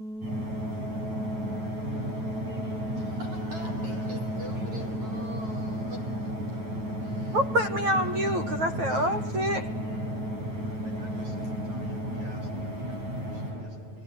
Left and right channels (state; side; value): late; left; 9.2 ms